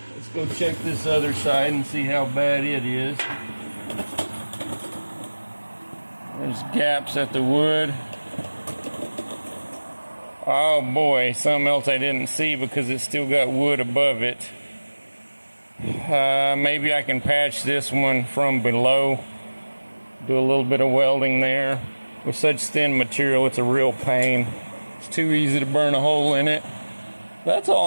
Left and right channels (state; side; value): inverted; both; correlation -1.00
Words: Let's go check this other side and see how bad it is. There's gaps at the wood. Oh boy, something else I didn't see because it's still got wood above it. Maybe I can patch this one from below. Do a little bit of welding there. With such thin material, it's a real pain. It's too easy to burn a hole in it. That's